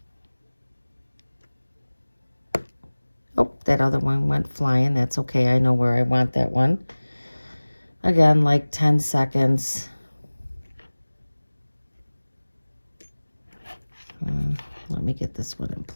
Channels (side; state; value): both; inverted; correlation -1.00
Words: Oh, that other one went flying. That's okay. I know where I want that one. Again, like 10 seconds. Let me get this one in